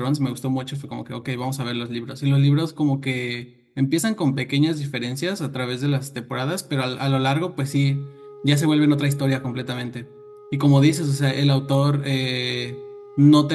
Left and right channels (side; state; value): both; identical; correlation 1.00